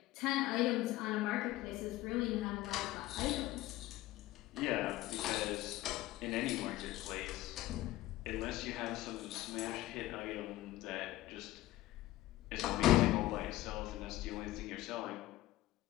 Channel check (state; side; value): quieter; right; 16.3 dB